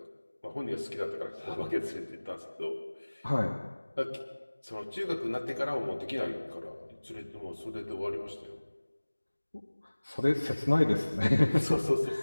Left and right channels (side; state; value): both; inverted; correlation -1.00